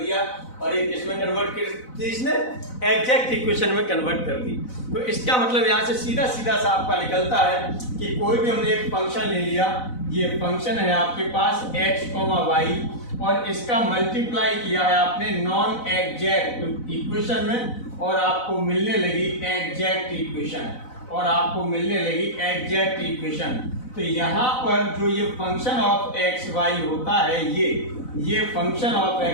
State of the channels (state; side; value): late; right; 4.0 ms